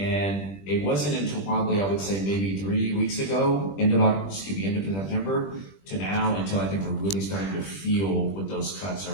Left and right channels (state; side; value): late; right; 20 ms